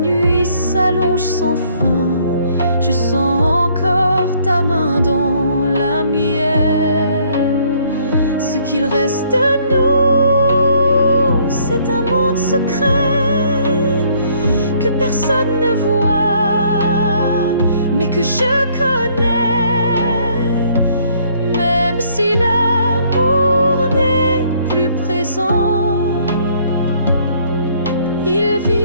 s'allonge sans fin, je sens encore ta main dans la mienne. Ce qu'il reste de nous, c'est un monde secret que personne ne voit, mais que je connais. Même si l'amour n'est plus présent, il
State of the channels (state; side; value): inverted; both; correlation -0.64